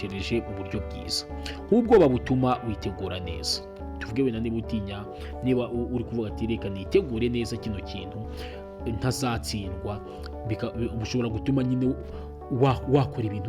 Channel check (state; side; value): identical; both; correlation 1.00